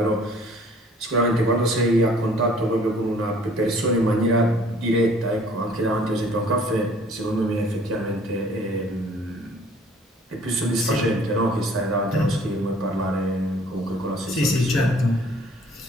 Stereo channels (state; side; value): normal; both; correlation 0.54